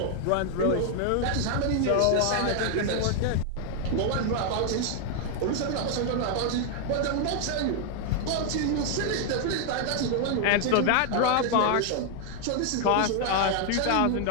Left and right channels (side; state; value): both; different; correlation 0.00